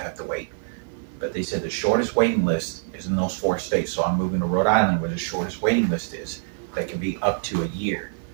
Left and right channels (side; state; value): left; silent; 61 dB below the other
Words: have to wait. But they said the shortest waiting list is in those 4 states, so I'm moving to Rhode Island where the shortest waiting list is. That can be up to a year.